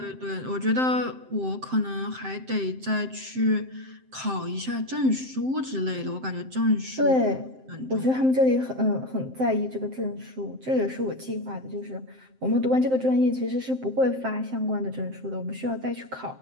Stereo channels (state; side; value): late; left; 7.7 ms